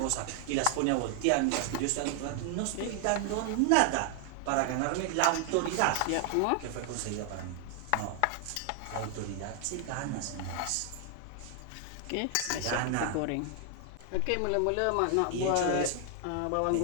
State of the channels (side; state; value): both; different; correlation 0.00